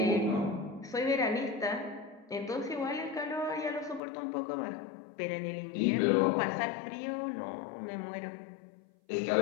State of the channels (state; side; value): drops out; right; at 4.0 s